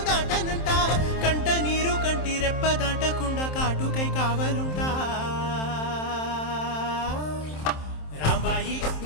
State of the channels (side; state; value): right; late; 27 ms